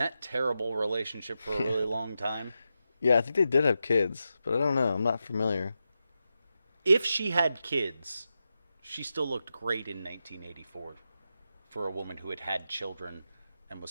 terrible relationship for a really long time. Yeah, I think they did have kids, but I don't know. I'm not familiar. If she had kids, she still looked great in 1984 for a woman who had had children and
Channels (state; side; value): inverted; both; correlation -0.89